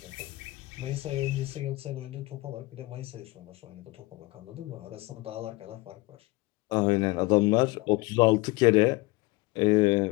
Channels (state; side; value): quieter; right; 22.2 dB